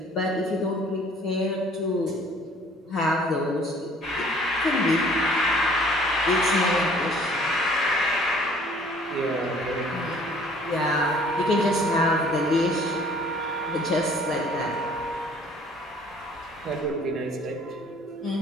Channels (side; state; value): both; normal; correlation 0.55